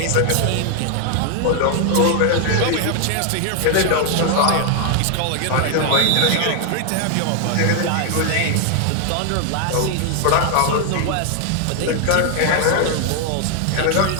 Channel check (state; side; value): different; both; correlation 0.00